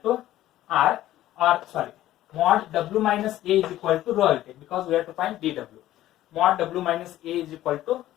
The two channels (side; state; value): right; quieter; 14.1 dB